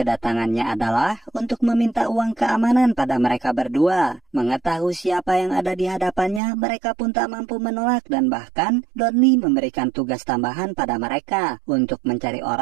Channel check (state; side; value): drops out; left; at 6.4 s